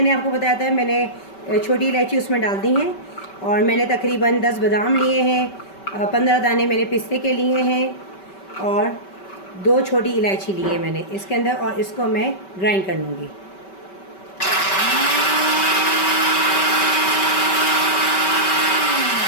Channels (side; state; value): right; late; 5.2 ms